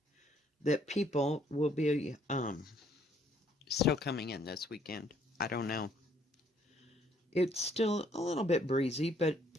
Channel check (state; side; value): normal; both; correlation 0.65